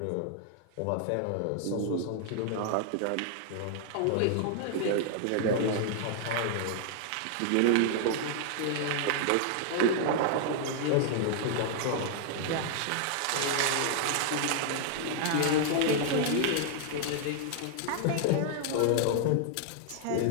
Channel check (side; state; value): both; different; correlation 0.00